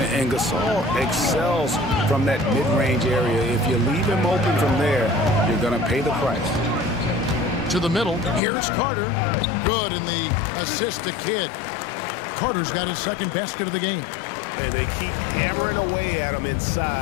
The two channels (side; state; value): right; drops out; at 8.4 s